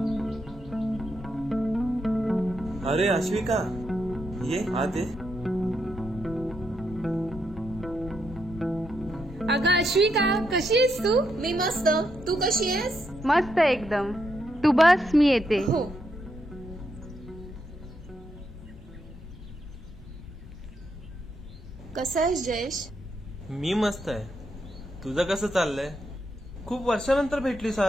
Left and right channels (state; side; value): normal; both; correlation 0.80